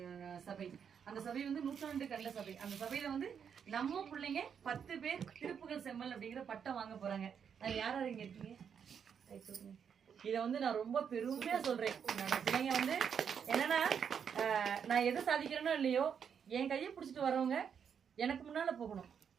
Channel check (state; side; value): quieter; left; 7.4 dB